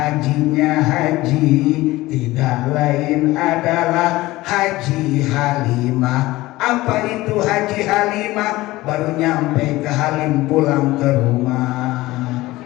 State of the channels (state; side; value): quieter; right; 18.5 dB